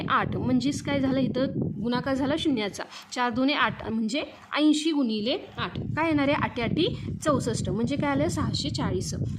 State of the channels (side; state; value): both; identical; correlation 1.00